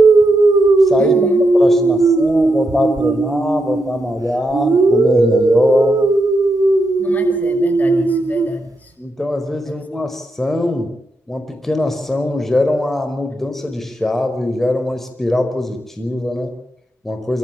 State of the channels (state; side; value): normal; both; correlation 0.84